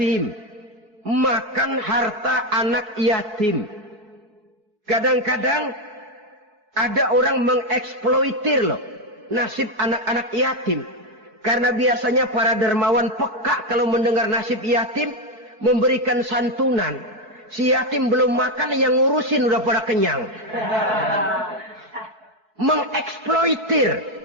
makan harta anak yatim. Kadang-kadang ada orang mengeksploitir loh nasib anak-anak yatim. Karena biasanya para dermawan peka kalau mendengar nasib yatim, memberikan santunan. Si yatim belum makan, yang ngurusin udah pada kenyang. Mengeksploitir,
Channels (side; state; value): left; late; 4.7 ms